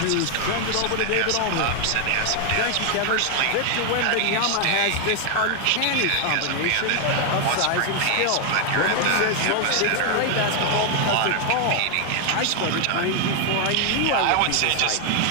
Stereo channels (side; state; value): both; different; correlation 0.01